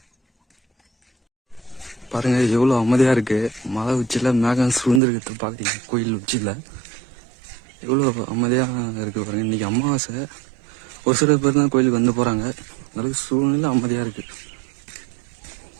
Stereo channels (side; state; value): left; drops out; at 5.0 s